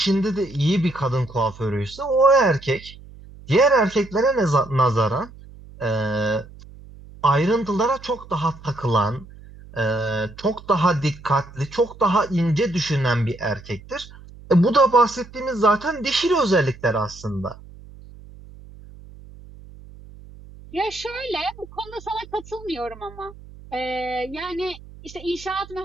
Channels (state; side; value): noise; right; hum, 19 dB below the sound